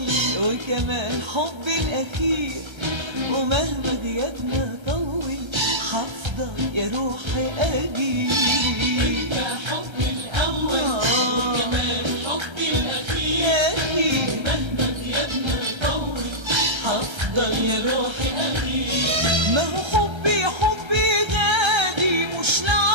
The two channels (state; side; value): late; left; 1.3 ms